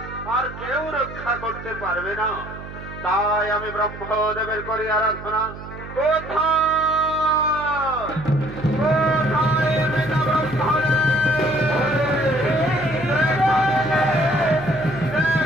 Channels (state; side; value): noise; right; hum, 13 dB below the sound